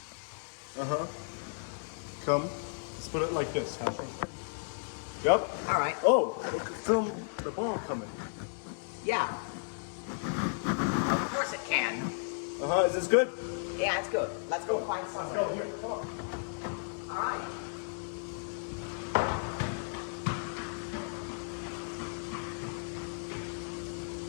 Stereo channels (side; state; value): right; silent; 55 dB below the other